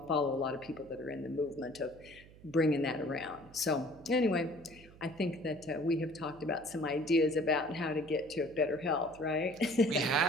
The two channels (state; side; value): noise; right; hum, 22 dB below the sound